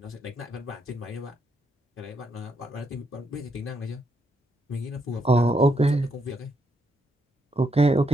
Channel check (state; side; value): normal; both; correlation 0.77